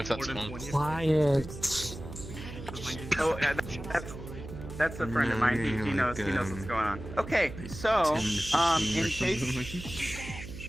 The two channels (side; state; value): right; noise; hum, 11 dB below the sound